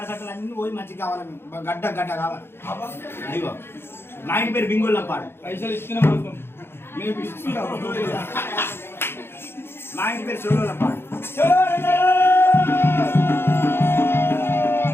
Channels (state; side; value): late; right; 0.11 ms